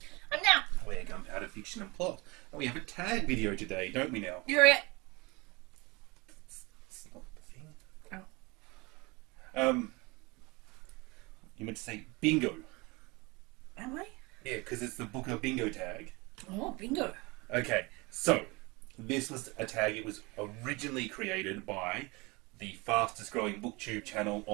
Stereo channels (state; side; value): quieter; left; 25.4 dB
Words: I'm now. We're Gunpowder Fiction and Plot. And we have a tag video today, don't we now? You're it. It's not the thing. Oh. You meant to say bingo. Am I? Yeah, because it's the Booker bingo tag. Oh, bingo. Okay, so this was a tag. It was originally created by the fastest growing Booktube channel